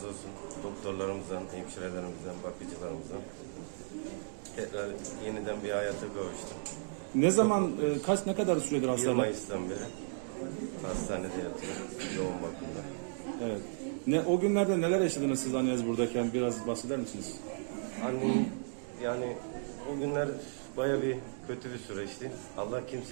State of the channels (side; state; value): left; silent; digital silence